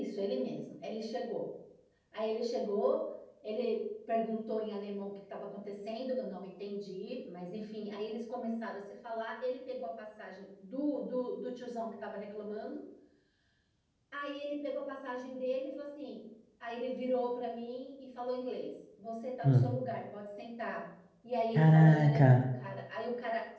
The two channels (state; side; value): identical; both; correlation 1.00